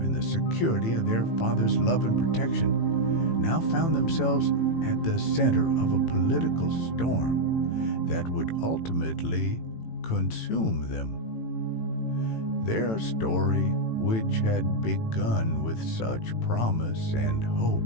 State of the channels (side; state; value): right; late; 18 ms